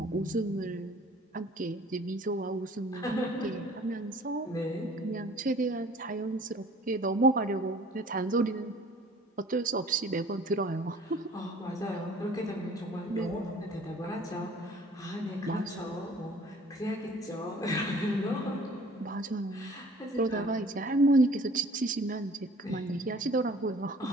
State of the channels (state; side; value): normal; both; correlation 0.51